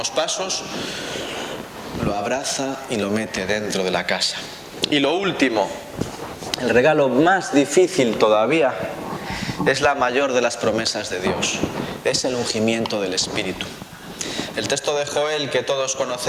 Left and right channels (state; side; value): identical; both; correlation 1.00